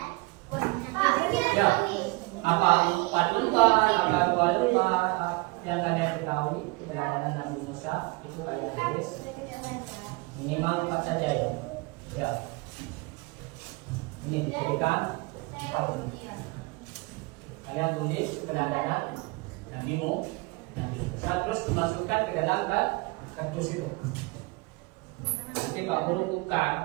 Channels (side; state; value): left; quieter; 26.2 dB